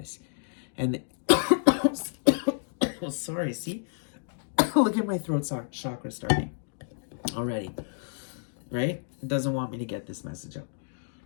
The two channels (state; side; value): silent; right; digital silence